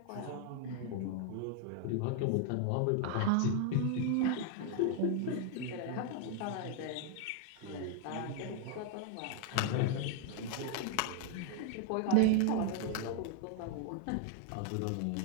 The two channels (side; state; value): both; different; correlation 0.00